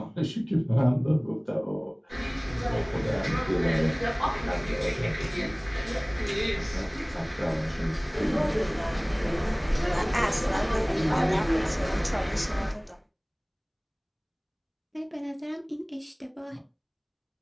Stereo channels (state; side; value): identical; both; correlation 1.00